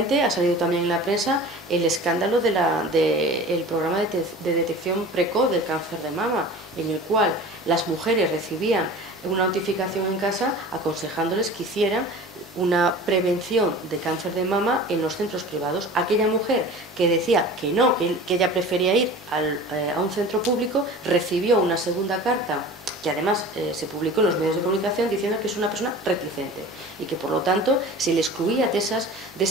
ha salido también en la prensa el escándalo del programa de detección precoz del cáncer de mama, en el cual las mujeres recibían una notificación en casa aconsejándoles que hicieran una prevención de cáncer de mama en los centros privados. Aquella mujer que decía que no, que ella prefería ir a un centro público, recibió una segunda carta que además se publicó en los medios de comunicación diciendo que es una persona reticente y que por lo tanto se le excluía de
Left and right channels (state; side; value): normal; both; correlation 0.39